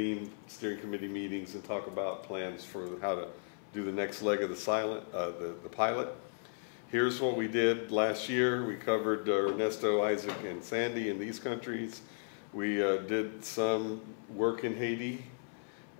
steering committee meetings and talk about plans for how to do the next leg of the pilot. Here's what we did last year. We covered Ernesto, Isaac, and Sandy in these countries. We did some work in Haiti.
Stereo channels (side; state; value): right; silent; 54 dB below the other